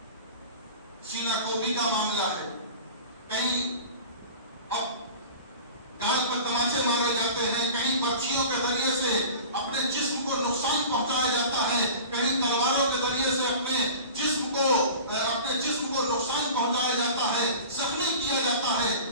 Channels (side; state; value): both; inverted; correlation -0.38